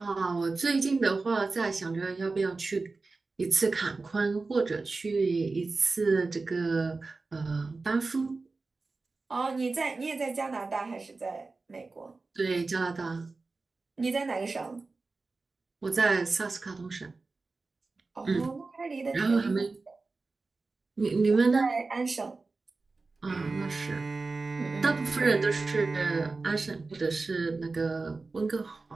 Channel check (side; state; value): left; quieter; 3.8 dB